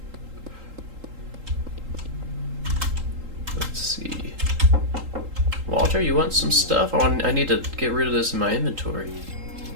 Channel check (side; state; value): left; late; 3.8 ms